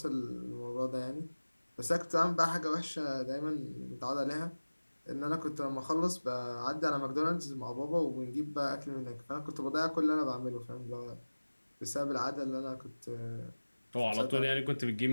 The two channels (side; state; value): both; inverted; correlation -1.00